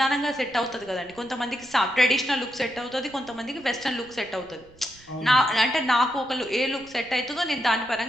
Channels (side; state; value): right; noise; rumble, 25 dB below the sound